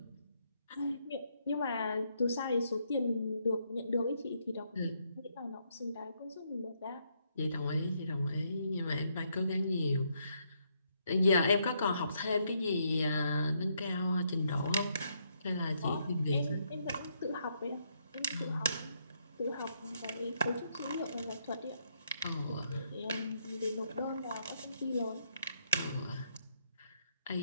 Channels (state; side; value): inverted; both; correlation -0.75